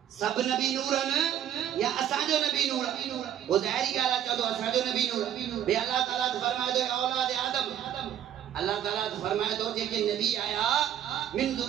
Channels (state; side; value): quieter; left; 10.4 dB